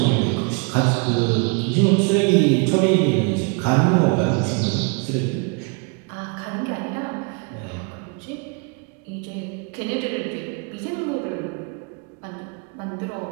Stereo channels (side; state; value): left; quieter; 33.9 dB